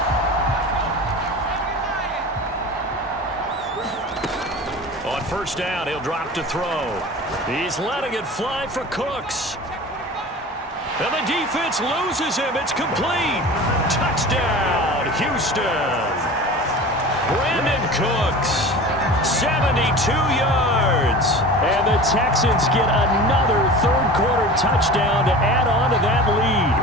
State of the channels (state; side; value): normal; both; correlation 0.36